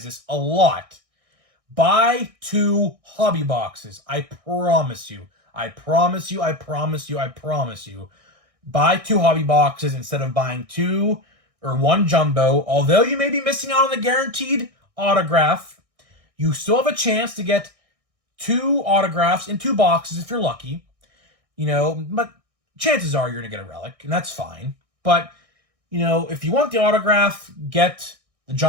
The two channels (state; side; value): late; left; 1.6 ms